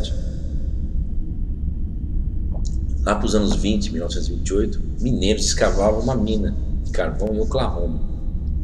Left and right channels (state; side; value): identical; both; correlation 1.00